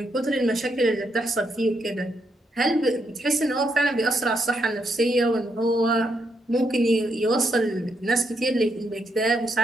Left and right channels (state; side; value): normal; both; correlation 0.79